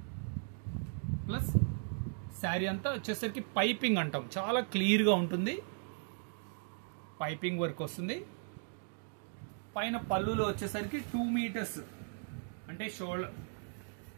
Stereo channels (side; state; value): left; silent; 53 dB below the other